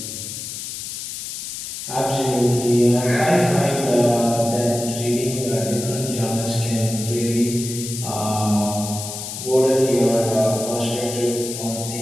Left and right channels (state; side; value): noise; left; hiss, 7 dB below the sound